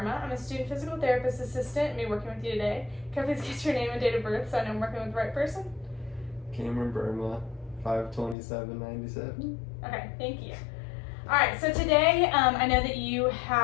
I'm a student physical therapist assistant and be working with you today. Can I please get your name and date of birth so I know I'm working with the right person? Cameron Burma, 5/27/97. Okay, thank you. All right, so today I know that you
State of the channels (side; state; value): right; drops out; at 8.3 s